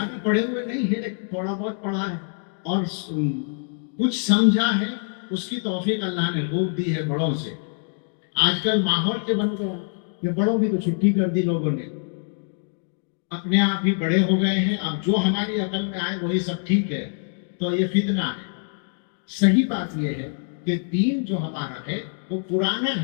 پڑھے ہوئے نہیں ہے لیکن تھوڑا بہت پڑھا ہے اور کچھ سمجھا ہے. اس کی توفیق اللہ نے خوب دی ہے بڑوں سے. آج کل ماحول کے بن گیا کہ بڑوں کی تو چھٹی کر دی لوگوں نے، اپنے آپ ہی بڑے ہو گئے ہیں، اب جو ہماری عقل میں آئے وہی سب ٹھیک ہے. تو یہ فتنہ ہے. صحیح بات یہ ہے کہ دین جو ہمارا ہے وہ پرانا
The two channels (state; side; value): silent; right; 62 dB below the other